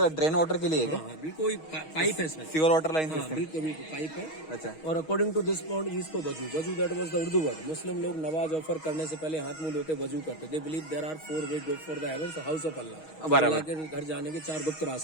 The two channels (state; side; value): late; right; 6.3 ms